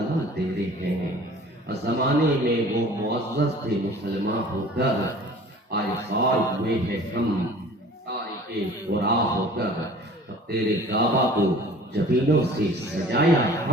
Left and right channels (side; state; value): both; normal; correlation 0.46